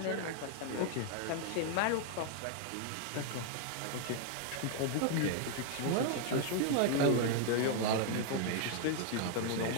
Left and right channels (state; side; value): different; both; correlation 0.00